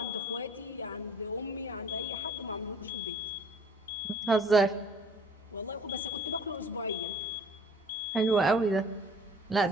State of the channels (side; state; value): both; normal; correlation 0.52